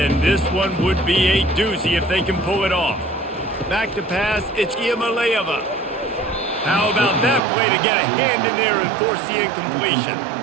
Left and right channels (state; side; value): drops out; left; at 7.4 s